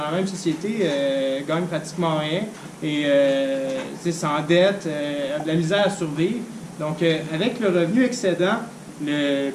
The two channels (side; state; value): both; identical; correlation 1.00